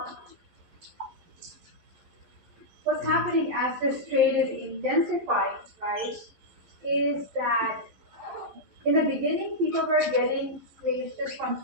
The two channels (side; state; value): left; late; 12 ms